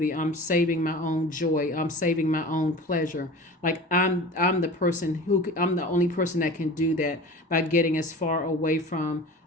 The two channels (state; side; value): normal; both; correlation 0.37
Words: I'm saving my own joy. I'm saving my own pleasure. Like I'm the person I'm the only person that can do that by getting as far away from